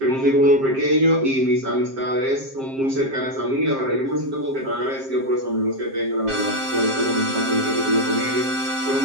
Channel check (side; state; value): left; late; 7.5 ms